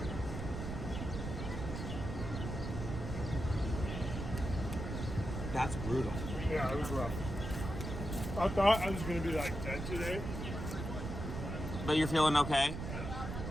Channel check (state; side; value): noise; right; rumble, 5 dB below the sound